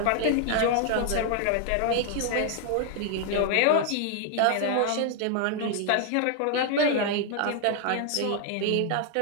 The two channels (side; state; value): both; different; correlation 0.00